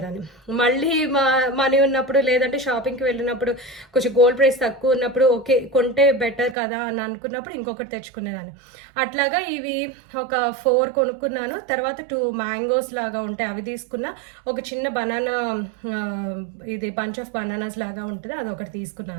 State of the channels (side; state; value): left; drops out; at 6.6 s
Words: మళ్ళీ మనీ ఉన్నప్పుడు లేదంటే షాపింగ్కి వెళ్ళినప్పుడు కొంచెం గోల్డ్ ప్రైస్ తక్కువ ఉన్నప్పుడు ఓకే కొంటే బెటర్ కదా అని అనుకున్నప్పుడు ఇంకొకటి తెచ్చుకునేదాన్ని. అట్లాగా ఇవి ఒక 4 కొనుక్కున్నాను. తర్వాత 2 మ్యాంగోస్ లాగా ఉంటాయి అవి తీసుకున్నా. ఒక చిన్న బనానా, ఇది బంచ్ ఆఫ్ బనానాస్ లాగా ఉంటుంది, అది ఒకటి